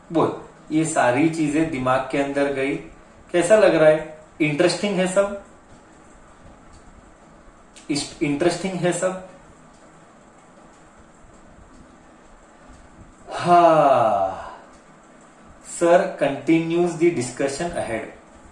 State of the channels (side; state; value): both; identical; correlation 1.00